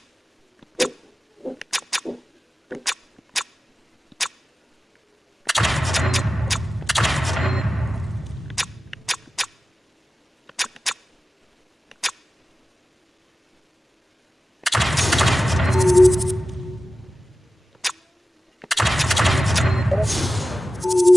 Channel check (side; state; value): both; normal; correlation 0.95